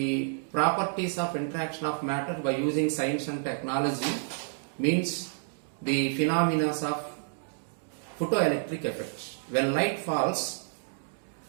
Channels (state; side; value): silent; left; digital silence